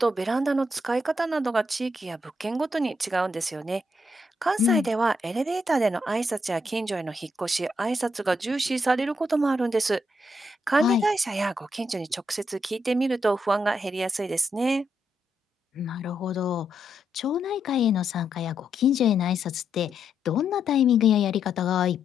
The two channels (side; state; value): both; normal; correlation 0.79